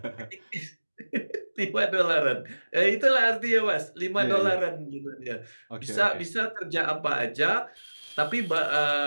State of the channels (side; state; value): both; inverted; correlation -1.00